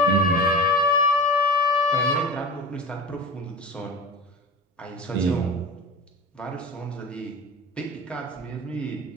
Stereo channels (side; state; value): both; normal; correlation 0.32